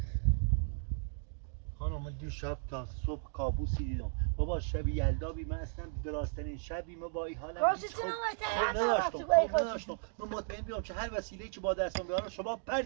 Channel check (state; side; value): silent; left; 54 dB below the other